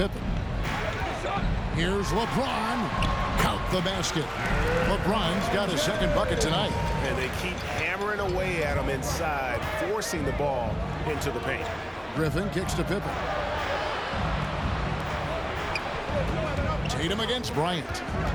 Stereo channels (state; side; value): identical; both; correlation 1.00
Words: Here's LeBron. Count the basket. LeBron's got his second bucket tonight. And they keep hammering away at him inside, forcing the ball into the paint. Griffin kicks to Pippen. Tatum against Bryant.